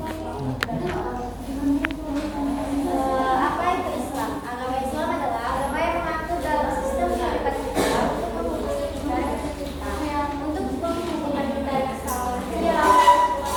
Apa itu Islam? Agama Islam adalah agama yang mengatur dalam sistem kehidupan kita untuk menghubungkan kita dengan alam semesta.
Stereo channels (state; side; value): identical; both; correlation 1.00